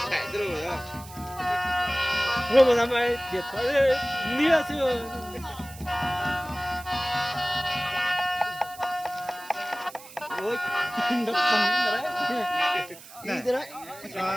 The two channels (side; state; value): right; noise; hiss, 18 dB below the sound